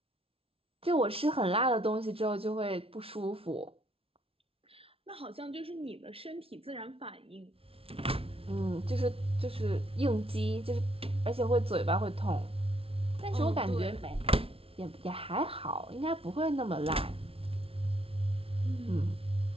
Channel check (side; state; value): left; late; 0.27 ms